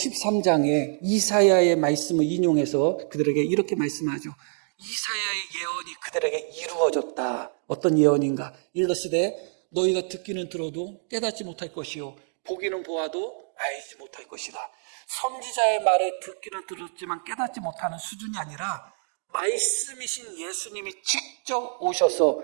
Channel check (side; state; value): left; silent; digital silence